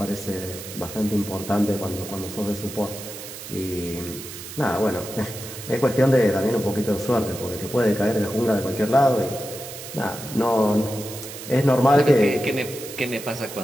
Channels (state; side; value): noise; right; hiss, 12 dB below the sound